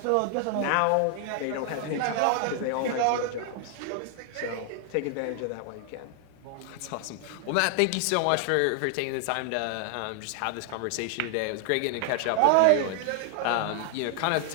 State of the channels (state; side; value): different; both; correlation 0.00